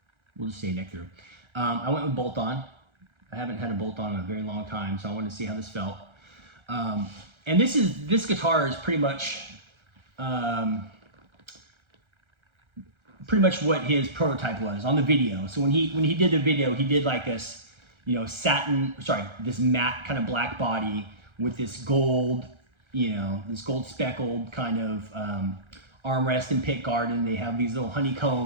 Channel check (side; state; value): left; late; 1.3 ms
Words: we'll just say neck through. I went with bolt on. I haven't had a bolt on in a very long time, so I wanted to see how this felt. And this guitar is pretty much what his prototype was on the video. So when he did the video, he did like this, you know, this matte kind of black body with this gold, you know, this gold speckled kind of armrest and pick guard, and they have these little